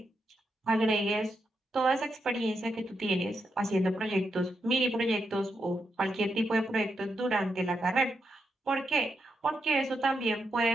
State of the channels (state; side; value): normal; both; correlation 0.83